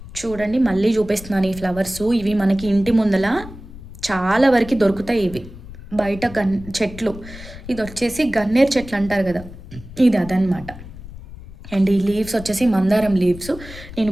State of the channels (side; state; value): left; noise; rumble, 15 dB below the sound